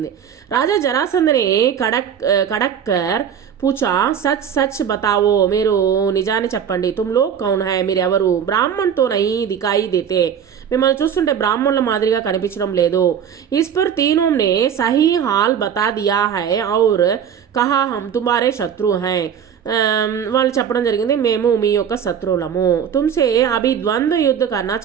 రాజా జరాసంధని కడక్కర్ పూచా సచ్ సచ్ బతావో, మీరు నిజాన్ని చెప్పండి. తుమ్లో కౌన్ హై, మీరు ఎవరు? బ్రాహ్మణ్తో నహీ దికాయి దేతే, మిమ్మల్ని చూస్తుంటే బ్రాహ్మణుల మాదిరిగా కనిపించడం లేదు. इस पर तीनों ने सही हाल बता दिया है और कहा हम तुम्हारे शत्रु हैं, వాళ్ళు చెప్పడం జరిగింది మేము మీ యొక్క శత్రువులము. తుమ్సే అభి ద్వంద్వ యుద్ధ కన్నా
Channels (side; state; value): left; quieter; 8.2 dB